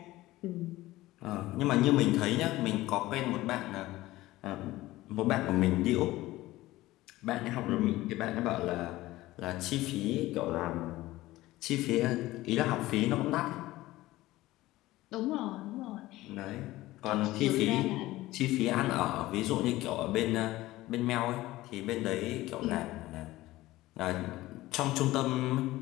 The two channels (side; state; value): right; quieter; 17.4 dB